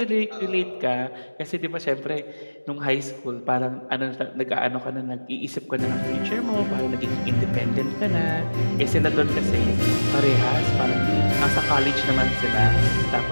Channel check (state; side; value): inverted; both; correlation -1.00